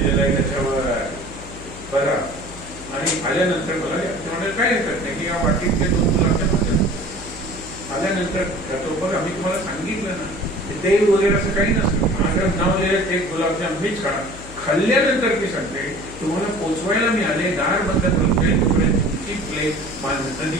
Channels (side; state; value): left; noise; hum, 15 dB below the sound